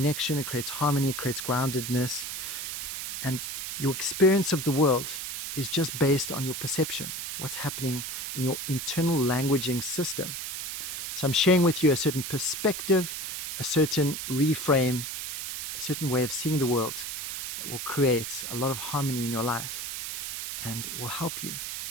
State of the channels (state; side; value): noise; right; hiss, 5 dB below the sound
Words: it creates harmony, it creates groundedness. And your experience of the world is just based on your perception, what's happening in your internal languaging system. So I'm sharing with you a certain perspective, a certain reframe, a certain way of seeing the world that will create a lot of harmony in your life, and it will help you